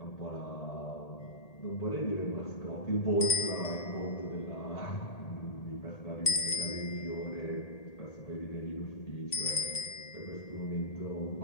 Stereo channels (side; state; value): right; late; 1.8 ms